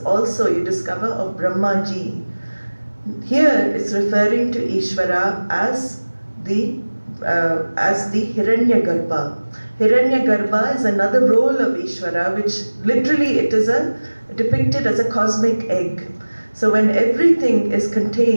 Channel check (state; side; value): inverted; both; correlation -1.00